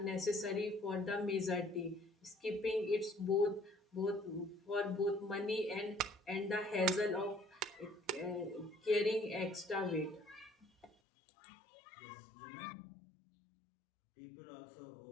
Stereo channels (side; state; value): right; drops out; at 11.0 s